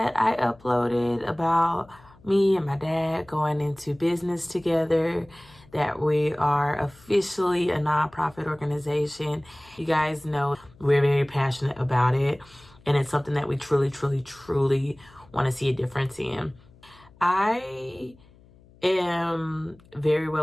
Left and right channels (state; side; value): noise; left; hum, 26 dB below the sound